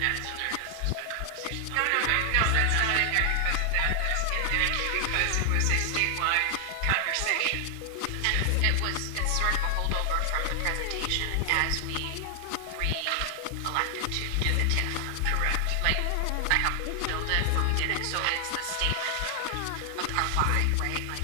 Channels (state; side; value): different; both; correlation 0.00